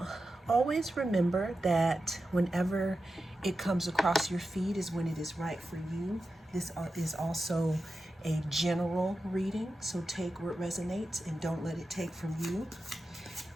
always remember that whenever it comes across your feed is when it is right for you. This is also a general reading, so take what resonates and don't let it take from you.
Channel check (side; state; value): both; normal; correlation 0.91